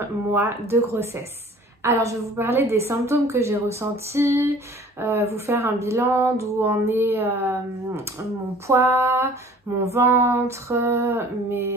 mois de grossesse. Alors, je vais vous parler des symptômes que j'ai ressentis, vous faire un bilan d'où en est mon poids, mon ventre,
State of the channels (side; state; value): both; normal; correlation 0.49